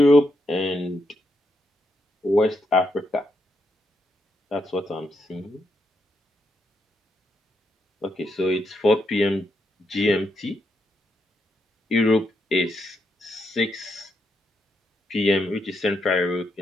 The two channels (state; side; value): normal; both; correlation 0.80